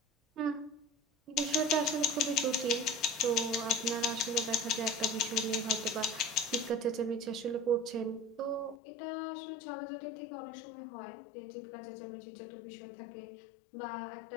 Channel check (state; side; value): drops out; right; at 8.8 s